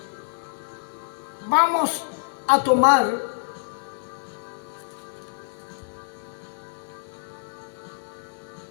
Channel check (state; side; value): silent; right; digital silence